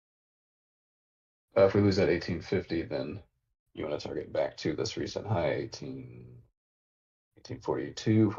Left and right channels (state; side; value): identical; both; correlation 1.00